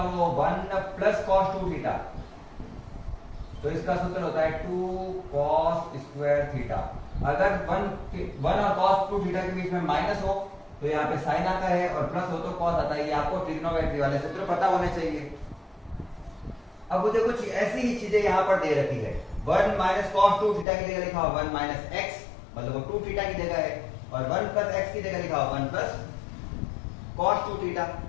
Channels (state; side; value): drops out; right; at 20.7 s